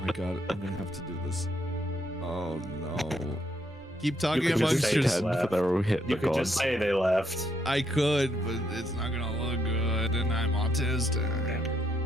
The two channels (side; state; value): both; normal; correlation 0.75